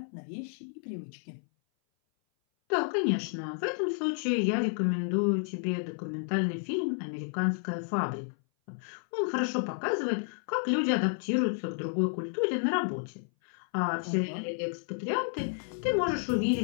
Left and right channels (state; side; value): silent; right; 57 dB below the other